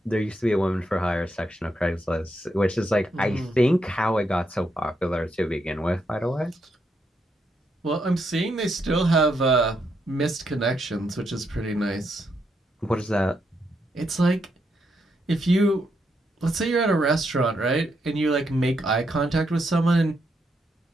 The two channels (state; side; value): normal; both; correlation 0.79